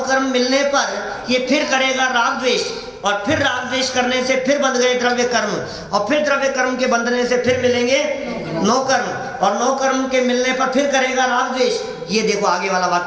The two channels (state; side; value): identical; both; correlation 1.00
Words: कर्म मिलने पर ये फिर करेगा राग द्वेष, और फिर राग द्वेष करने से फिर बंध गए द्रव्य कर्म, और फिर द्रव्य कर्म के बंधने से फिर मिलेंगे 9 कर्म, और 9 कर्म के मिलने पर फिर करेगा राग द्वेष। ये देखो आगे वाला